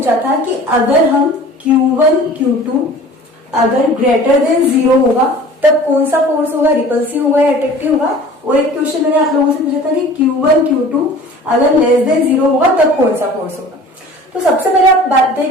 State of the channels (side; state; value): both; normal; correlation 0.44